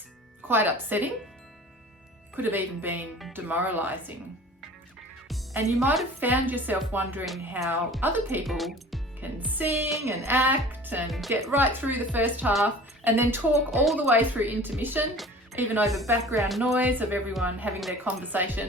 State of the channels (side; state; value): both; normal; correlation 0.43